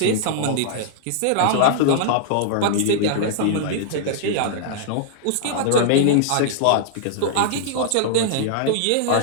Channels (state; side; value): different; both; correlation -0.01